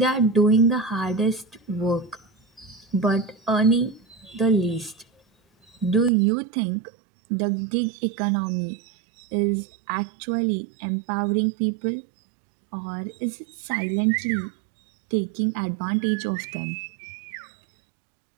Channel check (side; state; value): left; drops out; at 6.1 s